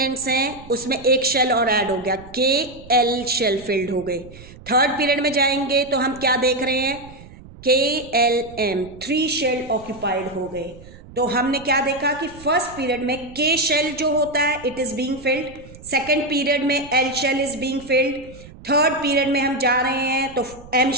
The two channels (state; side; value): noise; right; rumble, 19 dB below the sound